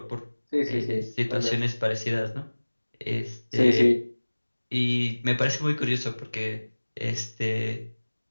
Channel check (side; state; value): both; inverted; correlation -1.00